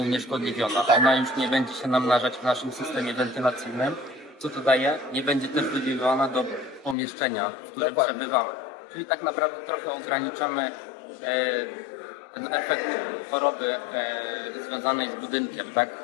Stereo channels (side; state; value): right; drops out; at 7.0 s